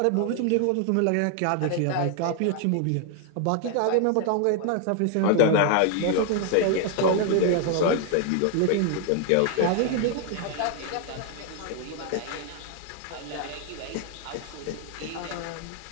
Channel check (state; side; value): different; both; correlation 0.00